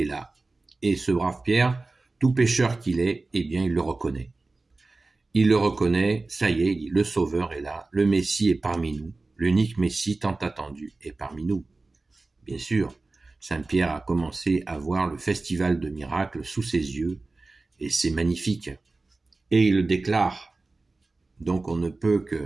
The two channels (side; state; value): left; quieter; 3.4 dB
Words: là. Et ce brave Pierre, tout pécheur qu'il est, eh bien, il le reconnaît. Il le reconnaît, ça y est, il dit, le Sauveur est là, le Messie est parmi nous, l'unique Messie tant attendu est parmi nous. Bien sûr, Saint Pierre a commencé à voir le festival de miracles sous ses yeux, et c'est magnifique. Et il le déclare. Donc on ne peut